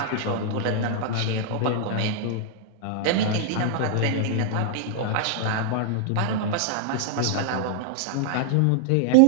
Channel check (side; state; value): both; different; correlation -0.01